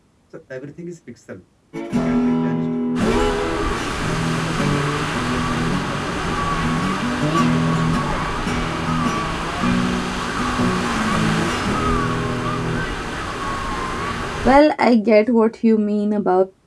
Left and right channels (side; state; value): both; identical; correlation 1.00